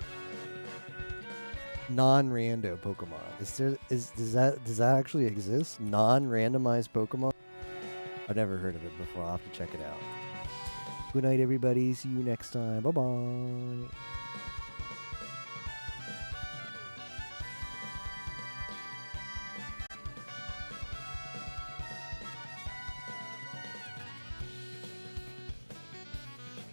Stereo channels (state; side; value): inverted; both; correlation -1.00